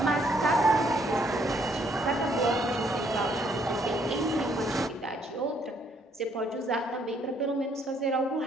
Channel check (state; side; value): normal; both; correlation 0.68